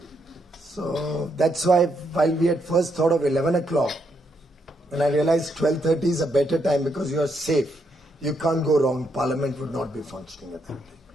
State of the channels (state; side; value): normal; both; correlation 0.77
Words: So that's why while we had first thought of 11 o'clock, and I realized 12:30 is a better time because you are safe. You can't go wrong. Parliament would not be functioning at that time.